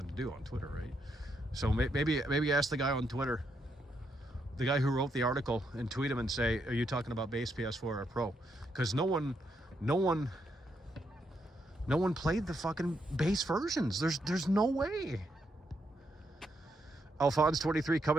to do on Twitter, right? So maybe ask the guy on Twitter, the guy who wrote the article, and tweet him and say, are you talking about base PS4 or Pro? Because no one played the fucking base versions. There's no way. Alphonse 23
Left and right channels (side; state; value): both; normal; correlation 0.79